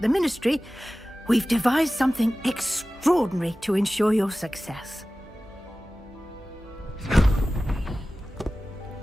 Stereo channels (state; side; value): normal; both; correlation 0.96